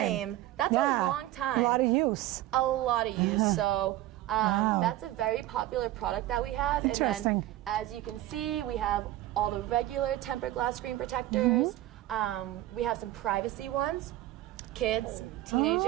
That's Yeah. a long time. A lot of use. A lot of use. So Wow. that's a very popular product that we have. Interesting. And then, as you can see, we have all the regular tempered glass screen protectors. We have some privacy ones. Kids, teenagers,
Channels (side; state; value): left; quieter; 15.3 dB